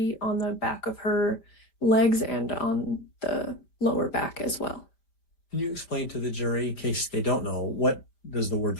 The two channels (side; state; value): right; late; 5.1 ms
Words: on the back of her legs and on the lower back as well. Can you explain to the jury, in case they don't know, what does the word